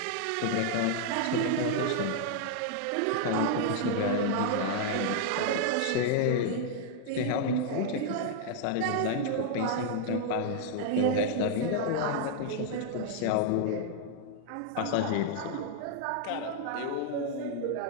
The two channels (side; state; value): both; different; correlation -0.01